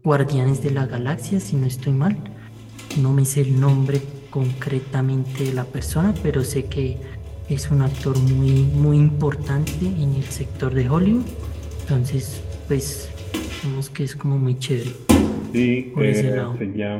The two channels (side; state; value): both; identical; correlation 1.00